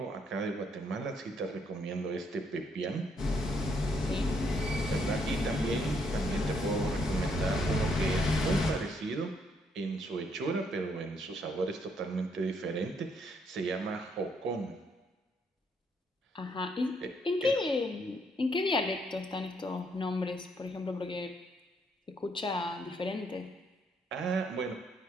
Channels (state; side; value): normal; both; correlation 0.72